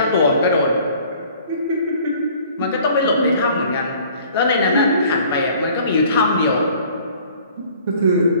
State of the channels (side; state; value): both; inverted; correlation -0.53